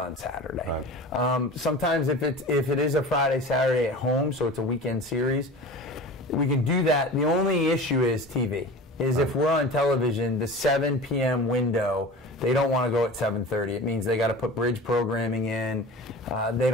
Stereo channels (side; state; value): both; normal; correlation 0.35